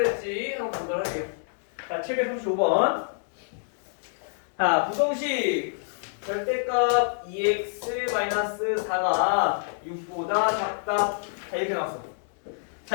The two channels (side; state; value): right; silent; 60 dB below the other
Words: 한번 보도록 할게요. 자, 735번. 자, 부동식 절대값 2x-4가 6보다 작다. 자, 이렇게 나왔어. 자,